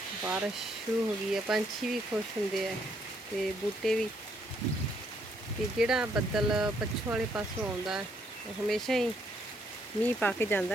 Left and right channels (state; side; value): normal; both; correlation 0.71